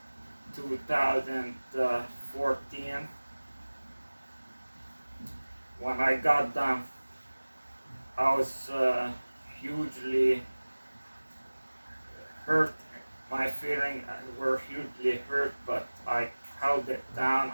2014. When I got them, I was hugely hurt. My feelings were hugely hurt, but I held it down.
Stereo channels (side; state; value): both; inverted; correlation -1.00